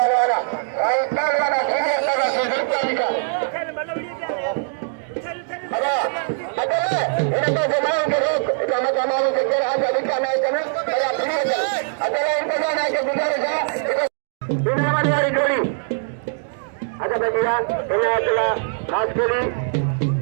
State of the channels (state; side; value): silent; left; digital silence